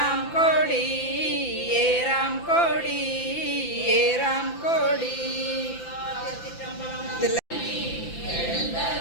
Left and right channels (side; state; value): right; late; 5.9 ms